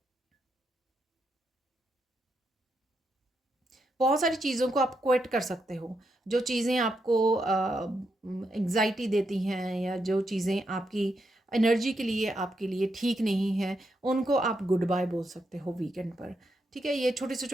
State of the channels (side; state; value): both; normal; correlation 0.82